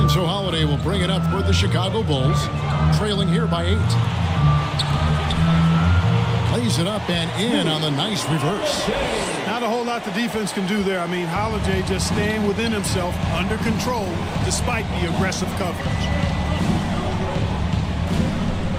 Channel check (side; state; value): both; identical; correlation 1.00